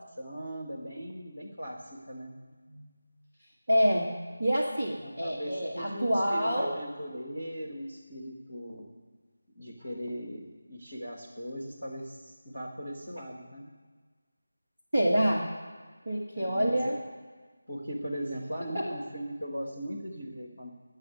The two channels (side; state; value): both; inverted; correlation -0.96